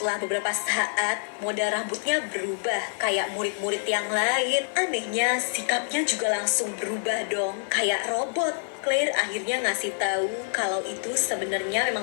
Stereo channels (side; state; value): right; silent; digital silence